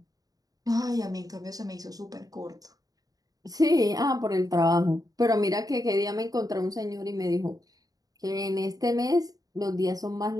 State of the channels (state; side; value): late; left; 0.18 ms